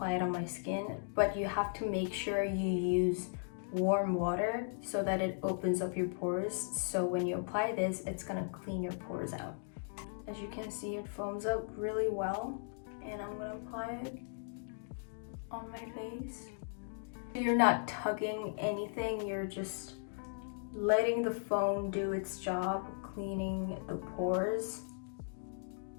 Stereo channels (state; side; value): silent; right; digital silence